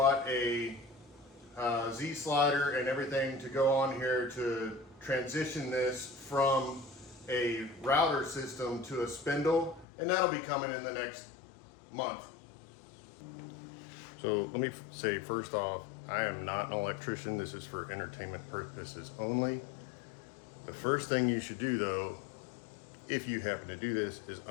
a Z slider and everything to go on here to transition this from a router system to a spindle, and that'll be coming in the next month. So let me say first off, I am not an electrician. This is for entertainment purposes only. The first thing you should do though, if you happen to do this, is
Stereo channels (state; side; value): drops out; right; at 9.9 s